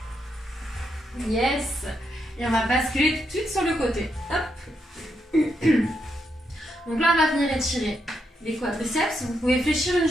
Yes. Et on va basculer tout de suite sur le côté. Hop. Donc là, on va venir étirer les quadriceps. Vous pouvez fléchir une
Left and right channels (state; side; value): normal; both; correlation 0.81